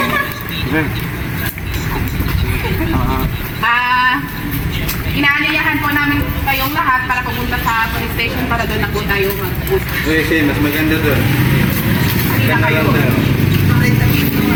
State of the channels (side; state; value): both; identical; correlation 1.00